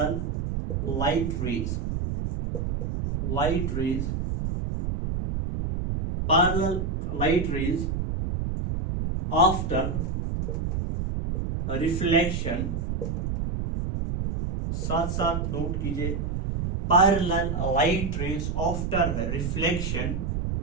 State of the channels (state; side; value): noise; right; rumble, 2 dB below the sound